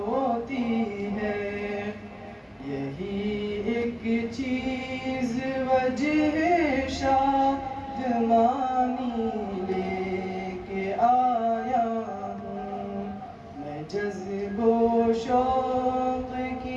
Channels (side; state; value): both; identical; correlation 1.00